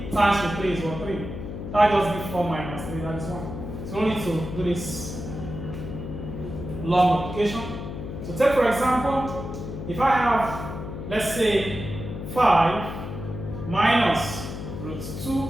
times root 3 is what? 3. That just gives 4 minus 3. That is 1. So we need to do this long multiplication. So take for example, if I have, let's say, 5 minus root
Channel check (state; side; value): noise; left; hum, 8 dB below the sound